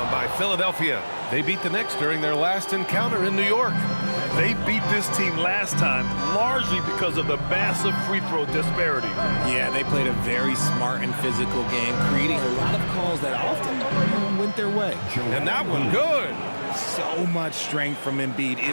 by Philadelphia. They beat the Knicks during their last encounter in New York. They beat this team last time largely because of the massive free throw disparity. Yeah, they played a very smart and physical game, creating a lot of calls that often went their way. And that one good. So much strength from Embiid.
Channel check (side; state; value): both; inverted; correlation -1.00